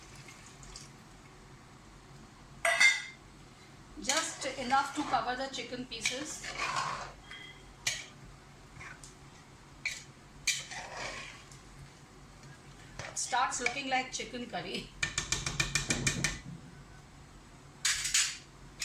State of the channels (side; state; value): both; identical; correlation 1.00